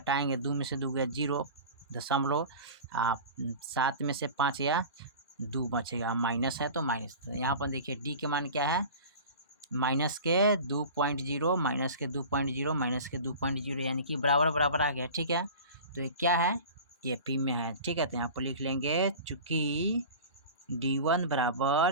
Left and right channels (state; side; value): inverted; both; correlation -0.36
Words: 2 में से 2 गया 0 दशमलव, 7 में से 5 या 2 बचेगा, माइनस है तो माइनस। तो यहाँ पर देखिए D के मान क्या है, माइनस के 2.0 माइनस के 2.0 माइनस के 2.0 यानी कि बराबर बराबर आ गया, ठीक है। तो ये क्या है, AP में है, ठीक है। तो यहाँ पर लिख लेंगे चूँकि D1